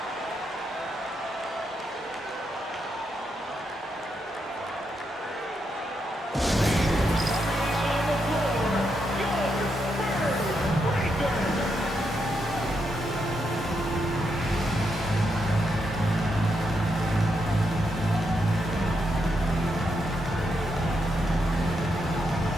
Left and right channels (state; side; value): normal; both; correlation 0.81